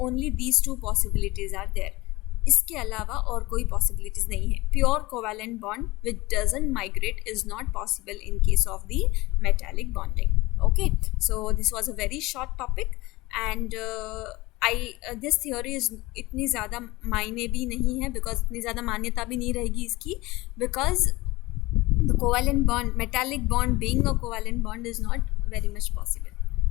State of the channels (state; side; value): quieter; right; 20.9 dB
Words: only these 2 possibilities are there. इसके अलावा और कोई पॉसिबिलिटीज नहीं है। Pure covalent bond which doesn't migrate is not possible in case of the metallic bonding. Okay, so this was a very short topic and this theory is इतनी ज़्यादा मायने भी नहीं है, बिकॉज इतनी ज़्यादा मान्यता भी नहीं रहेगी इसकी, because the covalent bond, metallic bond being a covalent bond is not very much possible.